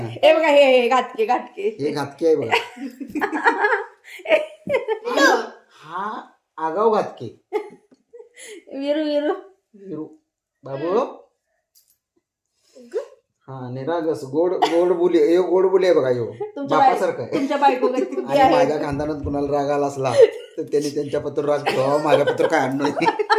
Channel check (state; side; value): identical; both; correlation 1.00